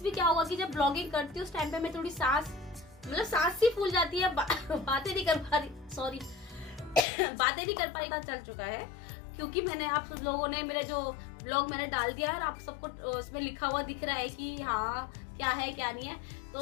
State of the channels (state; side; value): drops out; right; at 7.1 s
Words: भी किया होगा कि जब ब्लॉगिंग करती हूँ उस टाइम पे मैं थोड़ी सांस सी फूल जाती है, बातें नहीं कर पा रही, सॉरी बातें नहीं कर पा रही, चल चुका है क्योंकि मैंने आप सब लोगों ने मेरे जो ब्लॉग मैंने डाल दिया है और आप सबको उसमें लिखा हुआ दिख रहा है कि हाँ क्या है क्या नहीं है।